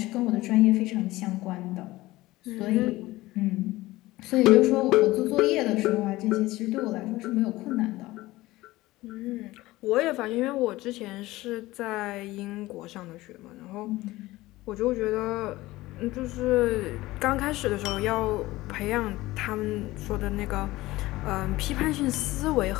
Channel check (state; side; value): quieter; right; 18.4 dB